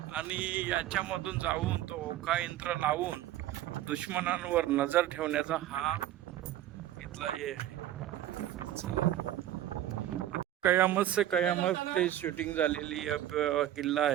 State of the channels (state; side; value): quieter; left; 12.7 dB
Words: याच्यामधून जाऊन तो ओका यंत्र लावून दुश्मनांवर नजर ठेवण्याचा हा इथला हे आहे. कयामत से कयामत ते शूटिंग झालेली किल्ला